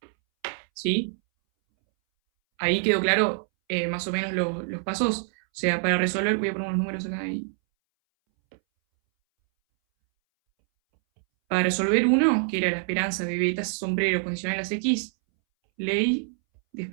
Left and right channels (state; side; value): silent; left; 61 dB below the other